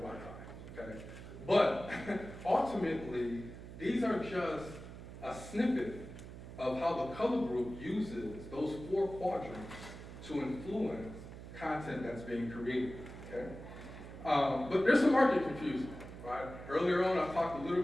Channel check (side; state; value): right; noise; hum, 13 dB below the sound